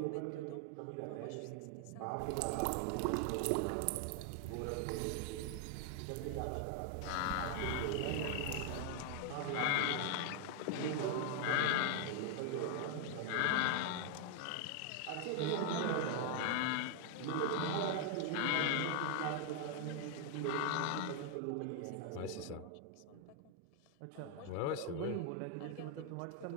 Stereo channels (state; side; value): different; both; correlation 0.00